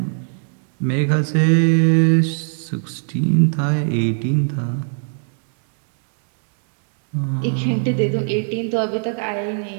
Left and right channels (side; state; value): left; silent; digital silence